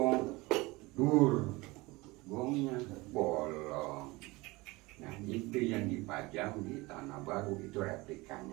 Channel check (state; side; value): quieter; left; 22.6 dB